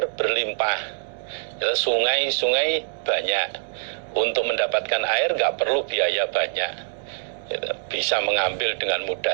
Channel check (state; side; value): silent; left; digital silence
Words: berlimpah, sungai-sungai banyak, untuk mendapatkan air nggak perlu biaya banyak, bisa mengambil dengan